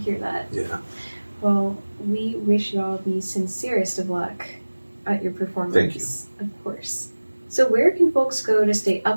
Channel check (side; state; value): both; inverted; correlation -1.00